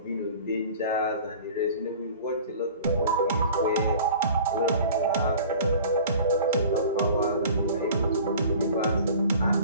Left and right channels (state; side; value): inverted; both; correlation -0.44